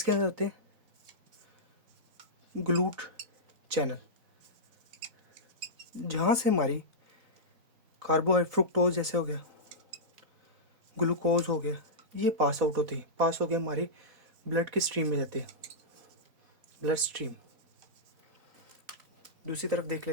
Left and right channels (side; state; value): left; late; 4.1 ms